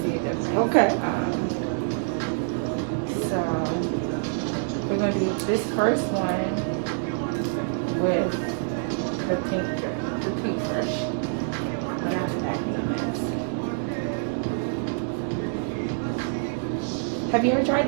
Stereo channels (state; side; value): silent; left; digital silence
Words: see a difference. Okay. So we're going to do this first one with the pink brush. Whatever that name is. Have you ever tried